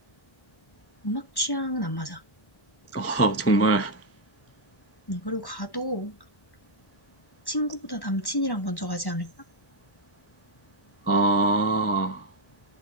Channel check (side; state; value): right; late; 1.1 ms